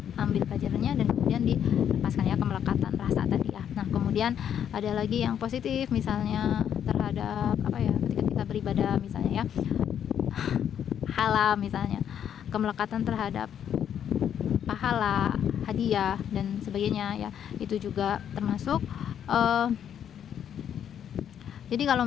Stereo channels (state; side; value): quieter; right; 9.1 dB